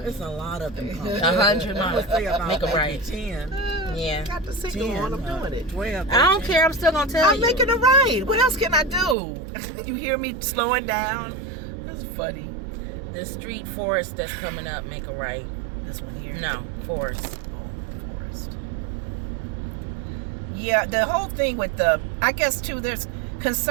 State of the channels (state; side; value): drops out; left; at 9.2 s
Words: It's a lot of them calling. 100 miles. Make a right. 10. Yeah. Got the signal on. I'm doing it. 12. 13. I don't care. I'm still gonna tell you. I'm making a right. What else can I do? You hear me slowing down? That's funny. The street Forest that's coming up. Make a right. This one here. No, Forest. Oh, Forest. Yeah, the whole thing with I guess too, there's